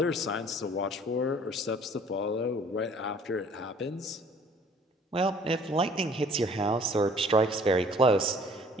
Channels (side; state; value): both; normal; correlation 0.54